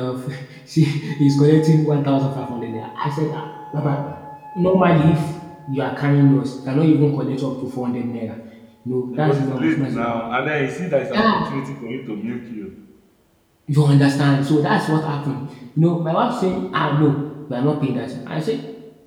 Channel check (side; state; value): both; identical; correlation 1.00